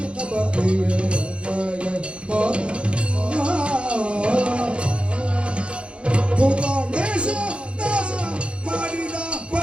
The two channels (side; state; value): left; late; 0.058 ms